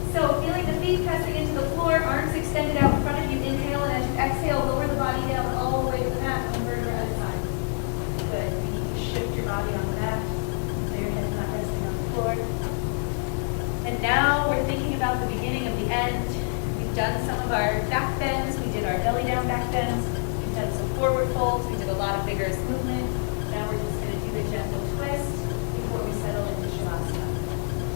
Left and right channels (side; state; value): right; silent; 60 dB below the other